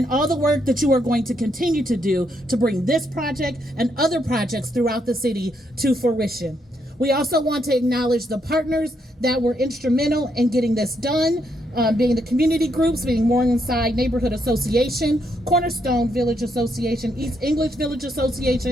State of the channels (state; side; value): normal; both; correlation 0.76